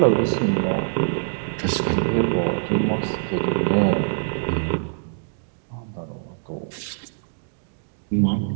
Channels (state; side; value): silent; left; digital silence